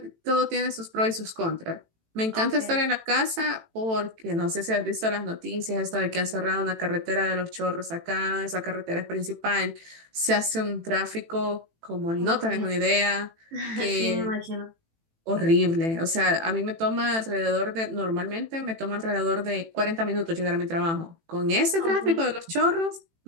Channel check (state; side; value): late; left; 18 ms